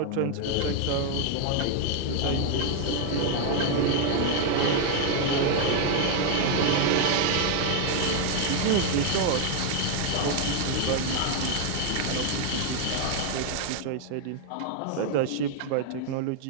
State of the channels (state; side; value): different; both; correlation 0.00